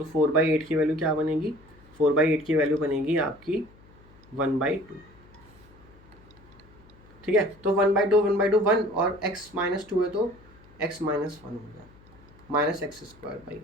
4/8 की वैल्यू क्या बनेगी, 4/8 की वैल्यू बनेगी आपकी 1/2। ठीक है, तो 1/2 1 और x -2 है तो x -1 हो गया माइनस एक्स स्क्वायर बाई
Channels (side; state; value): left; noise; hum, 25 dB below the sound